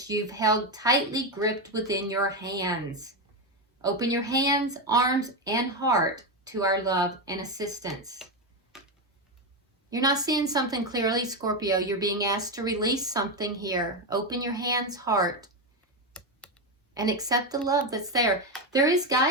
you've held tightly gripped within your hands. Open your hands, arms, and heart to our love and assistance. You're not seeing something clearly, Scorpio. You're being asked to release something here. Open your hands, heart, and accept the love that's there. There is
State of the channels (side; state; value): both; normal; correlation 0.10